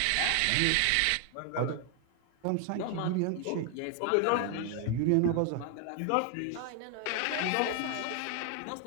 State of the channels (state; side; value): different; both; correlation 0.00